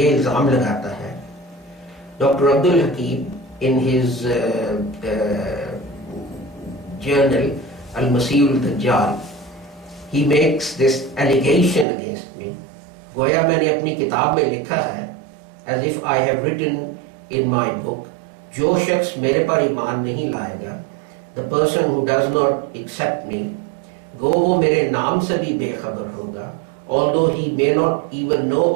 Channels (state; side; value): drops out; left; at 11.9 s